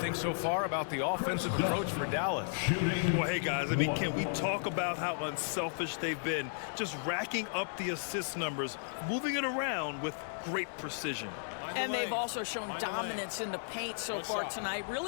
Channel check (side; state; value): right; silent; digital silence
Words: so far about the offensive approach for Dallas? Well, hey, guys, I mean, can we talk about how unselfish they've been? Just racking up the assist numbers, moving it around with great precision. And they've also shown dominance in the paint so far tonight,